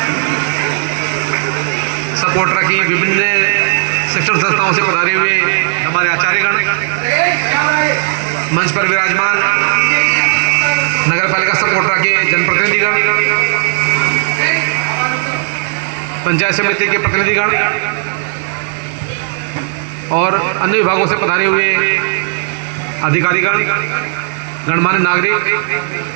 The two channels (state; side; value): silent; left; digital silence